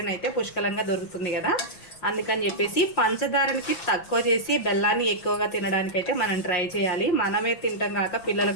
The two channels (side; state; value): right; late; 6.0 ms